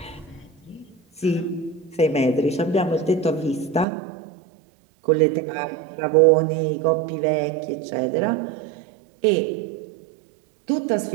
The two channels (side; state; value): left; drops out; at 3.9 s